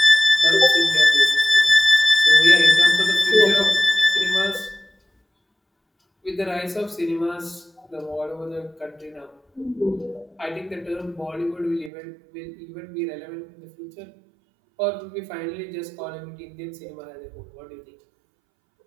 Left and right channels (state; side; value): drops out; left; at 11.9 s